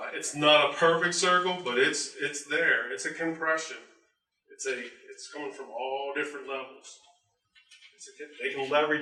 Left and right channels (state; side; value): identical; both; correlation 1.00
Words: It's not a perfect circle, but it's there. It's a compression. It's coming from all different levels. They can